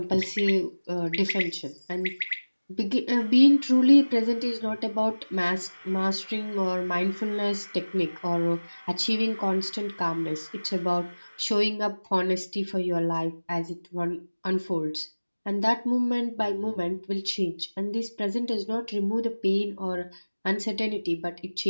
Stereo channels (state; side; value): inverted; both; correlation -1.00